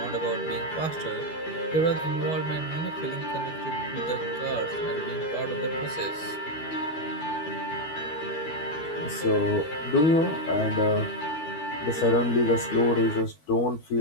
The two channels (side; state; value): right; late; 12 ms